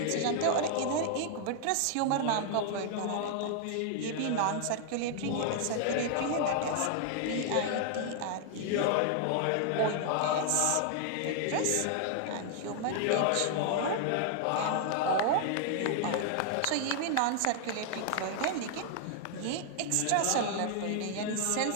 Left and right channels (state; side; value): different; both; correlation 0.00